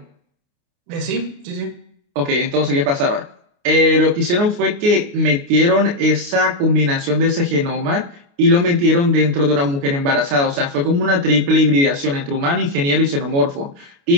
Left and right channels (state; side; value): late; left; 29 ms